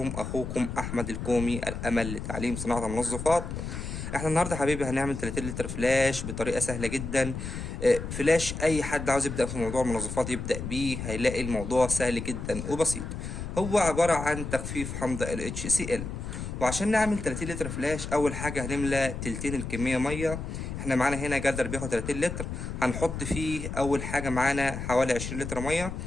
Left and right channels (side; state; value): left; noise; rumble, 6 dB below the sound